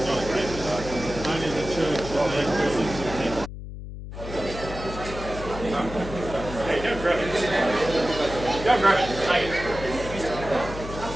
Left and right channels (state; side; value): noise; left; hum, 10 dB below the sound